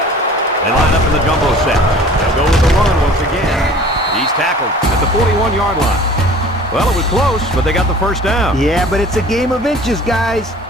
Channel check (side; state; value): both; normal; correlation 0.47